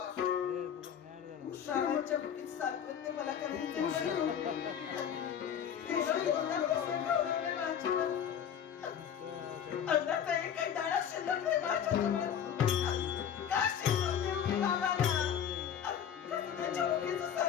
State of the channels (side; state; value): right; quieter; 8.7 dB